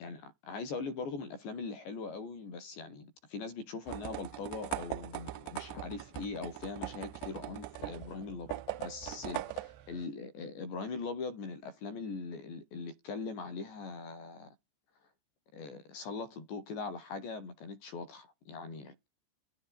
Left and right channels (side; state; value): right; late; 14 ms